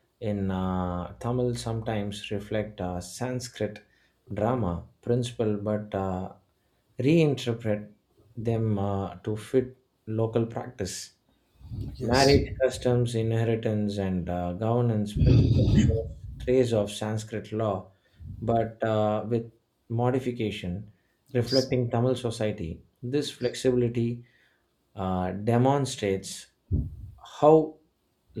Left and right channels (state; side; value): identical; both; correlation 1.00